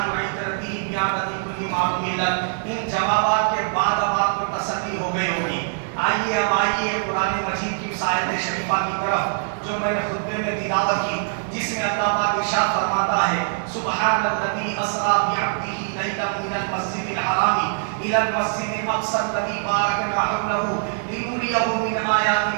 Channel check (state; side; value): silent; left; digital silence